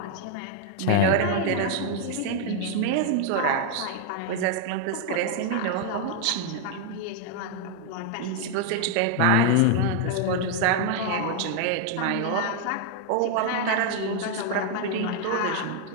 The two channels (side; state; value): both; different; correlation 0.00